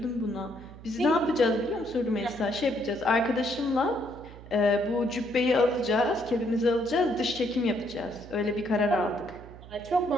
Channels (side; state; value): right; noise; hum, 17 dB below the sound